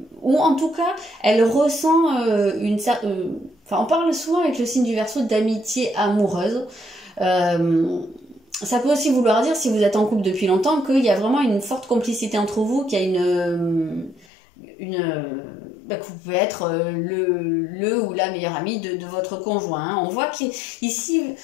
ou en tout cas elle ressent on parle souvent avec le signe du Verseau d'amitié amoureuse. Ça peut aussi vouloir dire, si vous êtes en couple depuis longtemps, qu'il y a vraiment une forte complicité entre vous, qu'il y a que vous pouvez être le ou la meilleure amie de votre conjoint. Hein. On voit qu'ici,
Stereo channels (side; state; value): right; drops out; at 14.2 s